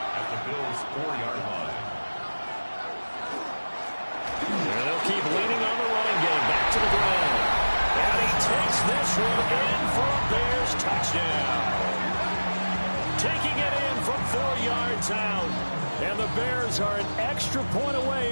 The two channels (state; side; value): inverted; both; correlation -1.00